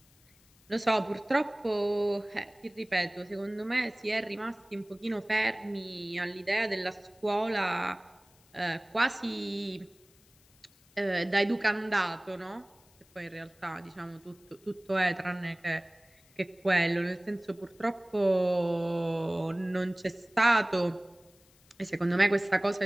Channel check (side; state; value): left; noise; hiss, 30 dB below the sound